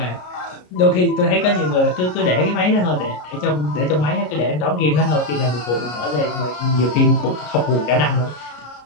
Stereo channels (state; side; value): late; right; 33 ms